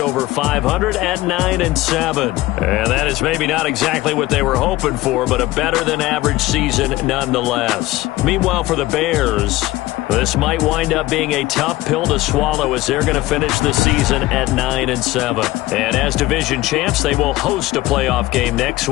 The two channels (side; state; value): right; quieter; 17.8 dB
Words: 500 at 9-7. And that is maybe not exactly what they were hoping for, but a better than average season nonetheless. Meanwhile, for the Bears, this might wind up being a tough pill to swallow as they're going to finish the season at 9-7. And as division champs, they will host a playoff game next